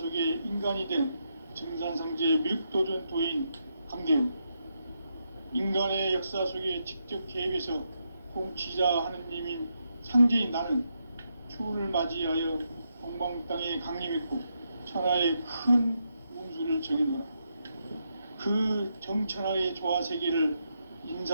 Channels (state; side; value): inverted; both; correlation -0.82